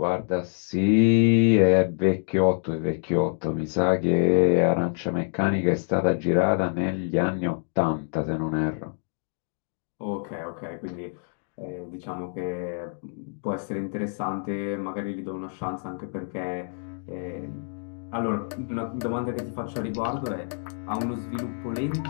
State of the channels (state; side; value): silent; right; 58 dB below the other